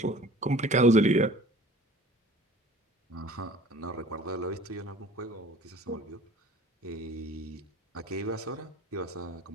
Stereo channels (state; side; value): normal; both; correlation 0.46